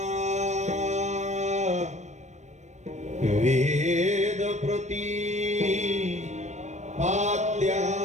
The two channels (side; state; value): left; late; 0.34 ms